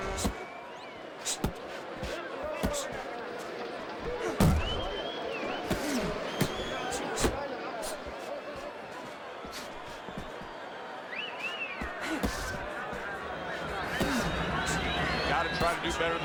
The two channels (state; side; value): identical; both; correlation 1.00